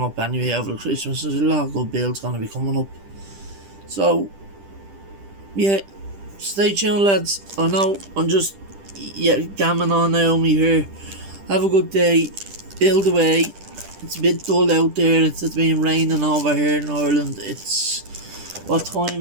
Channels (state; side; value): late; left; 10 ms